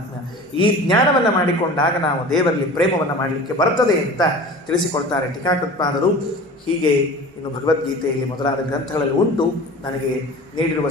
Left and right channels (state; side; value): normal; both; correlation 0.39